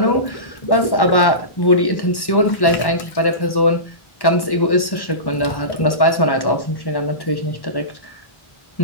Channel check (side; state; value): right; late; 1.1 ms